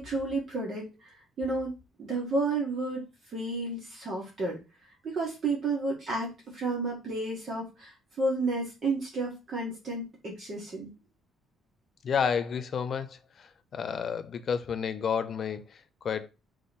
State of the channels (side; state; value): both; normal; correlation 0.57